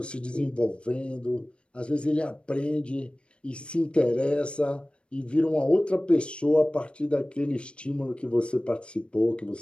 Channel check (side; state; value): right; late; 0.057 ms